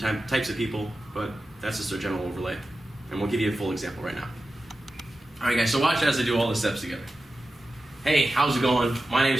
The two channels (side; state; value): both; normal; correlation 0.93